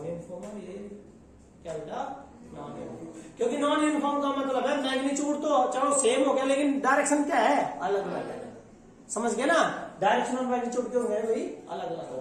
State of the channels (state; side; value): identical; both; correlation 1.00